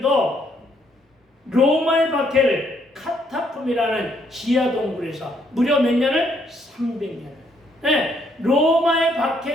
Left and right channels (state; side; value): normal; both; correlation 0.71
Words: 로마의 박해를 카타콤이라는 지하 동굴에서 무려 몇 년을? 300년을. 네, 로마의